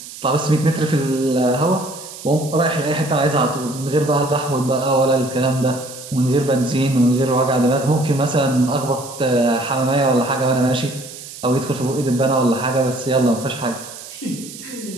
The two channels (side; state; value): right; noise; hiss, 14 dB below the sound